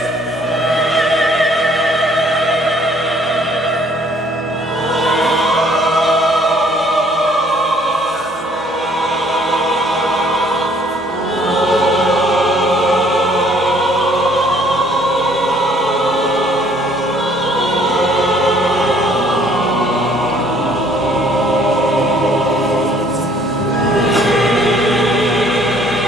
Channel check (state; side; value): normal; both; correlation 0.60